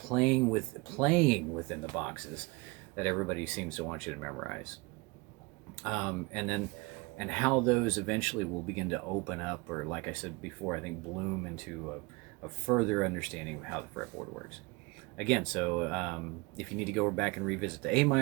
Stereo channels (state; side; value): quieter; left; 25.8 dB